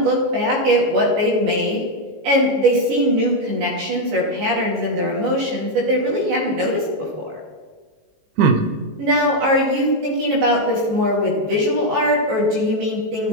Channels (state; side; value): late; left; 18 ms